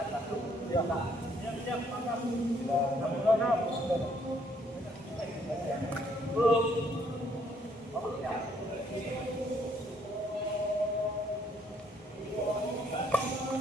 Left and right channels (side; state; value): both; normal; correlation 0.67